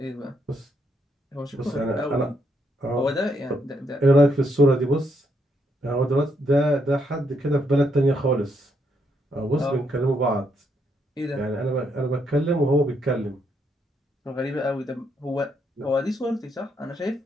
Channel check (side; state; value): both; normal; correlation 0.76